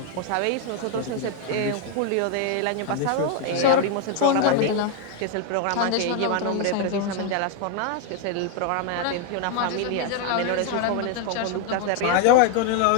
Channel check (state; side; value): different; both; correlation 0.01